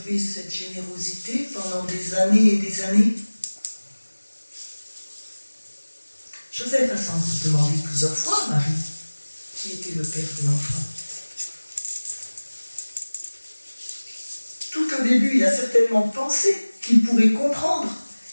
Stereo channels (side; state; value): both; inverted; correlation -1.00